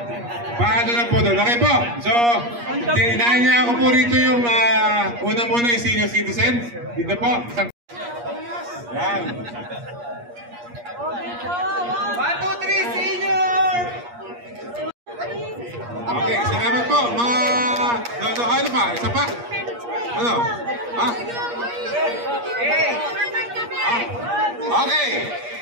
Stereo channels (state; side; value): late; left; 8.4 ms